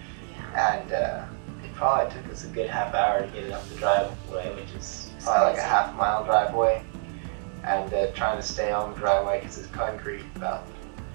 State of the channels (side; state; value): left; silent; 60 dB below the other